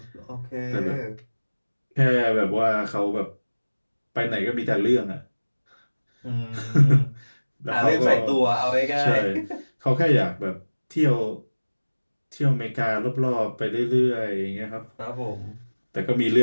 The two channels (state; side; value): inverted; both; correlation -1.00